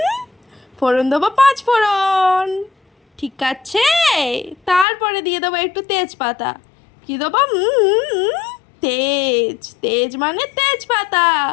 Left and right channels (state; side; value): drops out; right; at 4.9 s